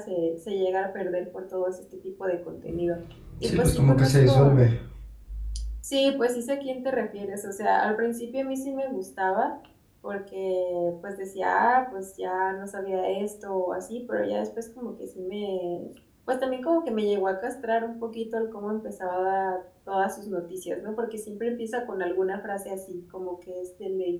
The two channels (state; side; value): identical; both; correlation 1.00